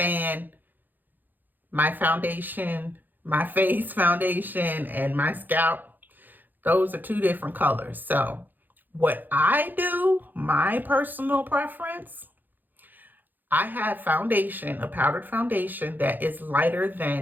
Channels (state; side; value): late; left; 0.087 ms